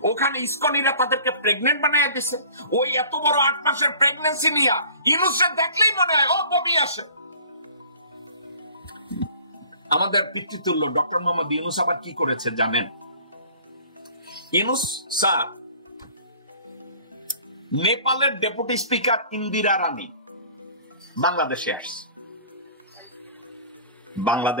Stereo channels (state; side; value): inverted; both; correlation -0.48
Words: ওখানে ইসকনিরা তাদেরকে প্রেগনেন্ট বানায় দিছে। ওই এত বড় 8 মাসের প্রেগনেন্সি নিয়ে ইউনূসকে দেখলেই মনে হয় ও বমি আসে। আমাদের পিতৃতুল্য ডক্টর মোহাম্মদ ইউনূস আবার কি করেছে জানেন? ইউনূস স্যার নেপালের ডেপুটি স্পিকার ইন্দিরা রানী বাংলাদেশে আসছে।